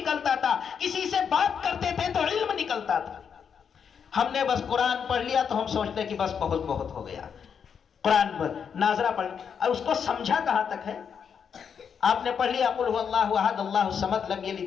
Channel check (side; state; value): right; quieter; 7.1 dB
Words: تھا، کسی سے بات کرتے تھے تو علم نکلتا تھا۔ ہم نے بس قرآن پڑھ لیا تو ہم سوچتے کہ بس بہت بہت ہو گیا۔ قرآن پر ناظرہ پڑھ اور اس کو سمجھا کہاں تک ہے؟ آپ نے پڑھ لیا قل هو اللہ احد اللہ الصمد لم